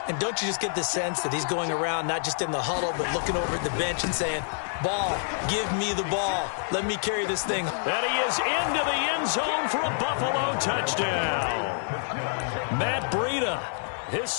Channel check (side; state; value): right; silent; digital silence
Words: And don't you just get the sense that he's going around not just in the huddle, but looking over at the bench and saying, ball, give me the ball. Let me carry this thing. And he is into the end zone for a Buffalo touchdown. Matt Breida, his